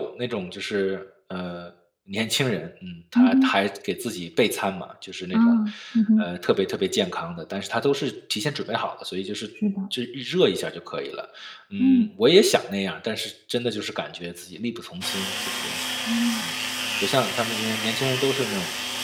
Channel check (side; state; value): both; identical; correlation 1.00